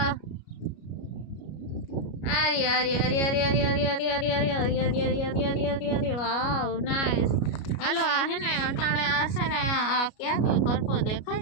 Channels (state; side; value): late; right; 33 ms